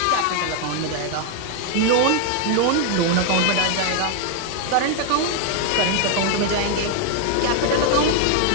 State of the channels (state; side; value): different; both; correlation 0.00